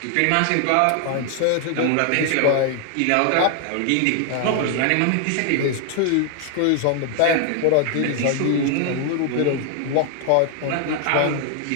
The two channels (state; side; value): different; both; correlation 0.00